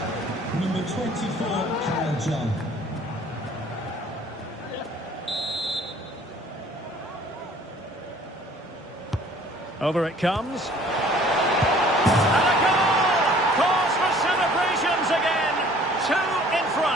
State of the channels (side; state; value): both; normal; correlation 0.53